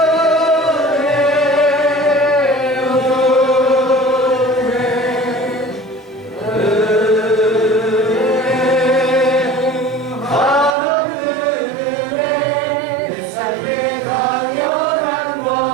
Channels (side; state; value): left; drops out; at 10.8 s